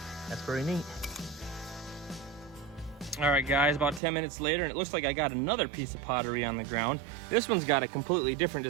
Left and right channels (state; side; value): drops out; left; at 4.0 s